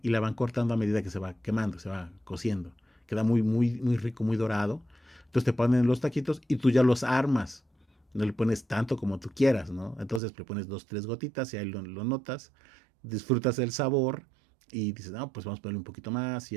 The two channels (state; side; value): drops out; left; at 10.2 s